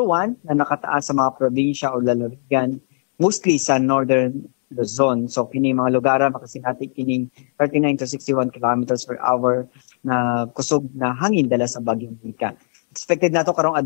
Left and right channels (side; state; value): right; silent; digital silence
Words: 1 na nakataas sa mga probinsya o lalawigan, mostly sa northern Luzon. So kini mga lugar makasinati kining 39 to 61 kilometers per hour na kusog na hangin dala sa bagyong Nika. Expected nato karong